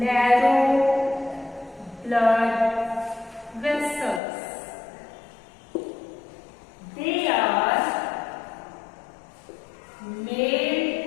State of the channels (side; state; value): right; drops out; at 4.2 s